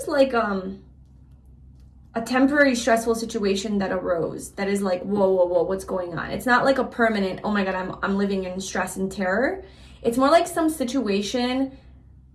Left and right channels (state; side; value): identical; both; correlation 1.00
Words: like a temporary stressful situation that arose that is like, whoa, what's going on? It's not like a permanent, oh my God, I'm living in stress and terror. It's more like some situation